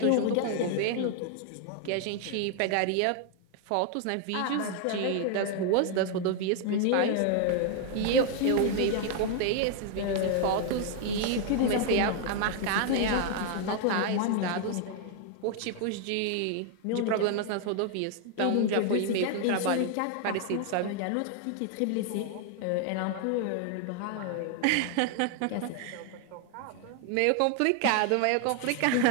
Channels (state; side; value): different; both; correlation 0.00